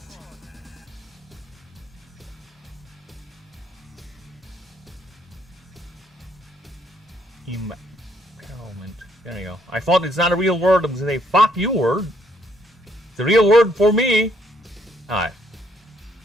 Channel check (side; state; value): both; normal; correlation 0.69